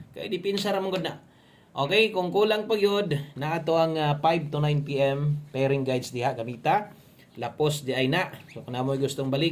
kay dipinsa ra man gud na. Okay, kung kulang pa gyud na ato ang 5 to 9 PM pairing guides diha gamita. Lapos di ay na. So kung namoy gustong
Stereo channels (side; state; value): both; identical; correlation 1.00